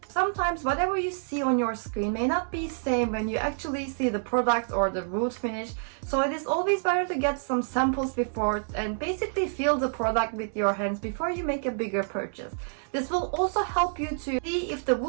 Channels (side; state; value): left; silent; digital silence